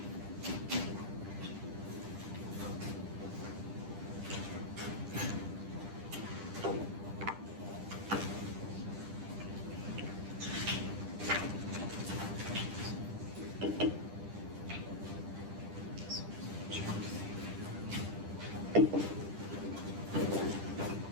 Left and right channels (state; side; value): late; left; 10 ms